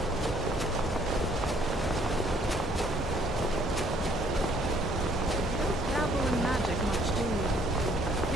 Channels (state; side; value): normal; both; correlation 0.63